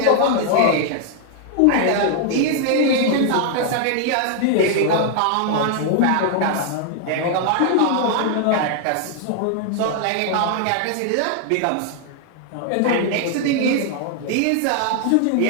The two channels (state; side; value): different; both; correlation 0.00